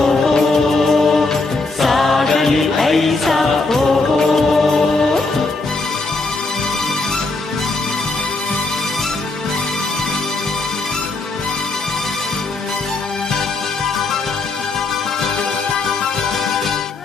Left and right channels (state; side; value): quieter; right; 3.5 dB